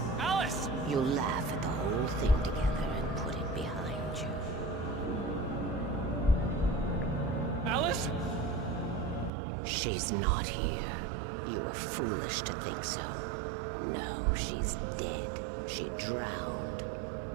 Alice! You'll laugh at the whole thing together and put it behind you. Alice? She's not here. You were foolish to think so. No, she's dead. She drowned.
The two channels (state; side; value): drops out; left; at 9.3 s